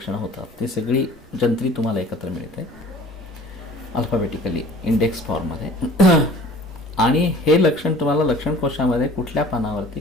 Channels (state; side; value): normal; both; correlation 0.47